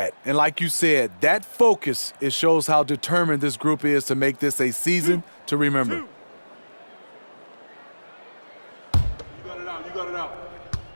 And like you said, that focus, it shows how determined this group is to make this a season to remember. You got it out.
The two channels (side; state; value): both; inverted; correlation -1.00